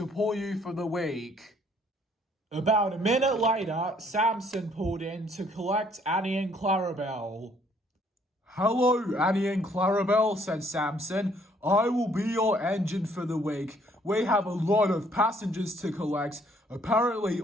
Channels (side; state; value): both; normal; correlation 0.64